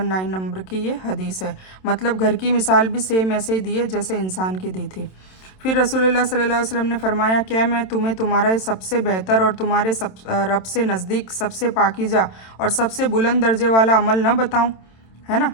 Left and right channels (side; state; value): right; late; 27 ms